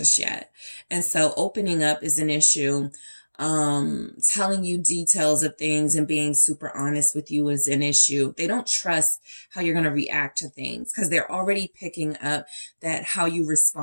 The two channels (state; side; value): inverted; both; correlation -1.00